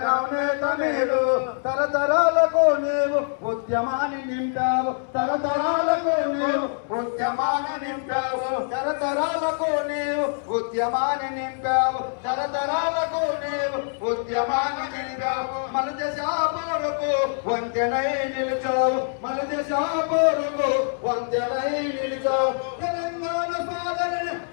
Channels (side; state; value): right; silent; digital silence